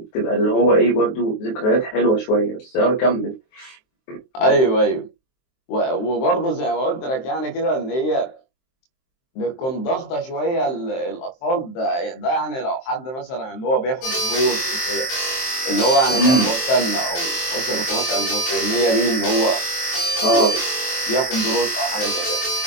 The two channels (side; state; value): right; late; 23 ms